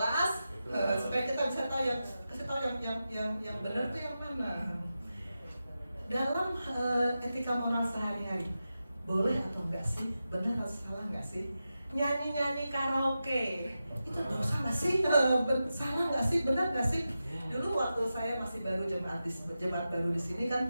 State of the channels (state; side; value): inverted; both; correlation -0.91